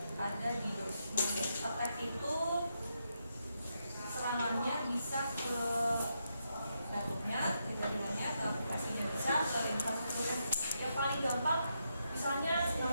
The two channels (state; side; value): inverted; both; correlation -0.82